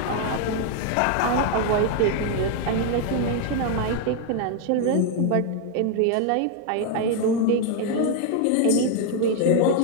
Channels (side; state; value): both; different; correlation 0.00